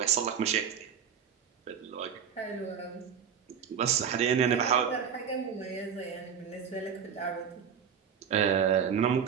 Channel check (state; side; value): quieter; left; 7.6 dB